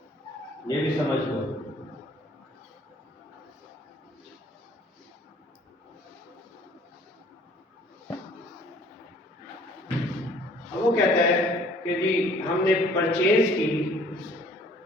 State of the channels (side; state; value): both; normal; correlation 0.56